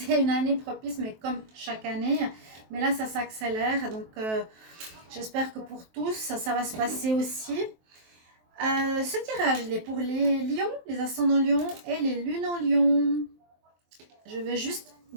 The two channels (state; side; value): late; left; 23 ms